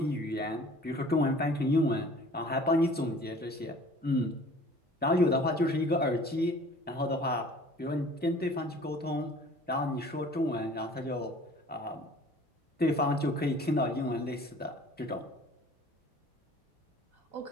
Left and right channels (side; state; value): both; normal; correlation 0.49